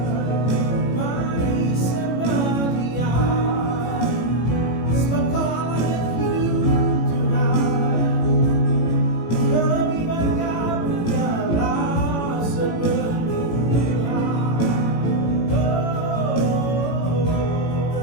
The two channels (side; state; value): right; late; 18 ms